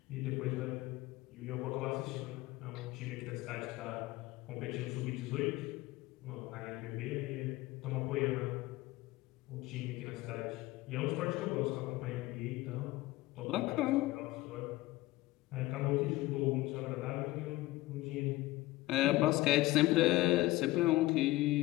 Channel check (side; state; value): right; quieter; 18.6 dB